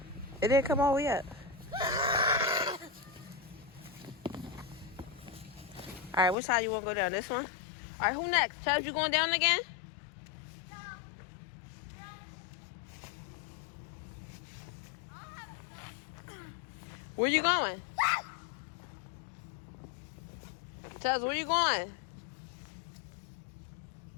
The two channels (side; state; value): right; drops out; at 6.4 s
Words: It didn't come all the way up. Alright, which side you want to go down? This one? Alright, who next? Chubbs, you going down again? Where you going? Chubbs, where you going?